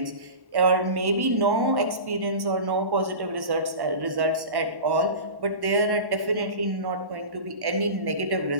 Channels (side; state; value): left; late; 1.1 ms